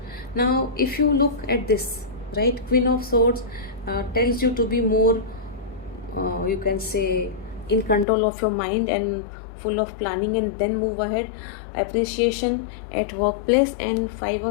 Now if you look at this, right, Queen of Swords tells you to be more, you can say, in control of your mind and full of planning, and then move ahead. Appreciation at workplace. And Five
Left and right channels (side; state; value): right; drops out; at 8.1 s